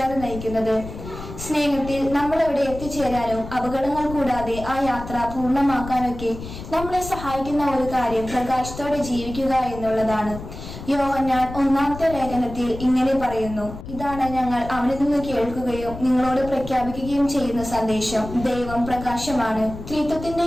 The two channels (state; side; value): noise; left; rumble, 11 dB below the sound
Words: നയിക്കുന്നത്. സ്നേഹത്തിൽ നമ്മൾ എവിടെ എത്തിച്ചേരാനും അപകടങ്ങൾ കൂടാതെ ആ യാത്ര പൂർണ്ണമാക്കാനൊക്കെ നമ്മളെ സഹായിക്കുന്ന ഒരു കാര്യം പ്രകാശത്തോടെ ജീവിക്കുക എന്നുള്ളതാണ്. യോഹന്നാൻ 1-ാമത്തെ ലേഖനത്തിൽ ഇങ്ങനെ പറയുന്നു: ഇതാണ് ഞങ്ങൾ അവനിൽ നിന്ന് കേൾക്കുകയും നിങ്ങളോട് പ്രഖ്യാപിക്കുകയും ചെയ്യുന്ന സന്ദേശം ദൈവം പ്രകാശമാണ്.